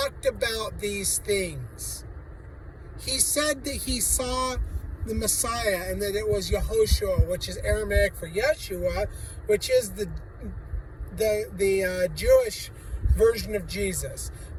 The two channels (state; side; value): identical; both; correlation 1.00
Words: about these things. He said that he saw the Messiah and that it was Yehoshua, which is Aramaic for Yeshua, which is the Jewish version of Jesus.